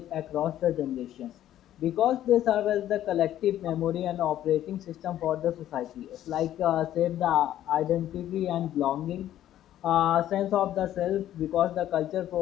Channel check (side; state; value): right; quieter; 12.2 dB